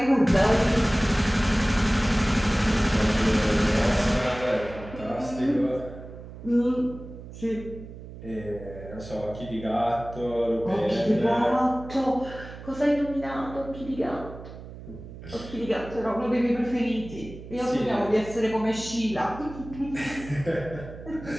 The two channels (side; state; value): right; noise; hum, 14 dB below the sound